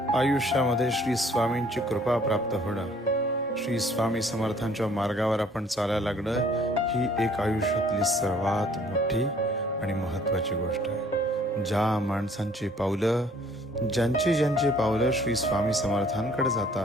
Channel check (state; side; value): normal; both; correlation 0.58